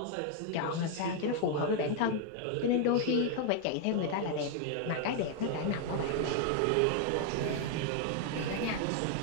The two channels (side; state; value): both; different; correlation 0.00